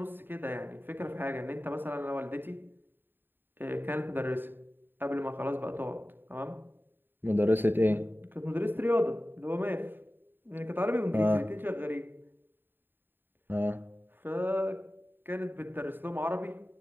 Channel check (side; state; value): left; late; 0.095 ms